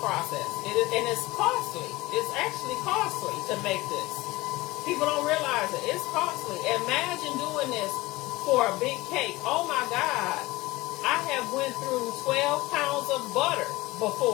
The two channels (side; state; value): right; quieter; 20.2 dB